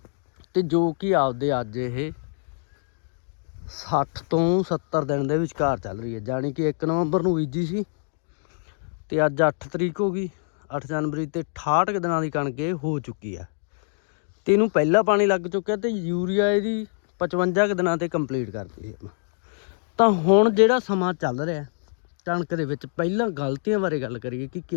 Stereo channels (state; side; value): silent; right; digital silence